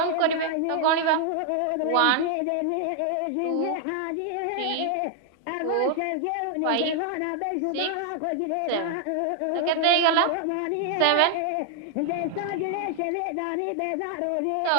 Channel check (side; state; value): both; different; correlation 0.00